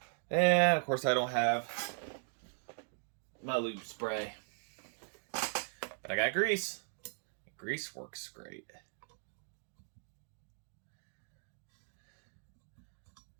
And, of course, I don't have my lube spray. But I got grease. Grease works great.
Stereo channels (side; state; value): left; silent; digital silence